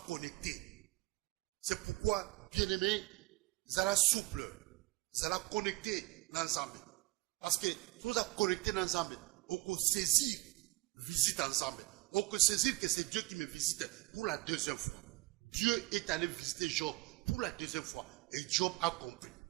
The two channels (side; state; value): left; quieter; 21.9 dB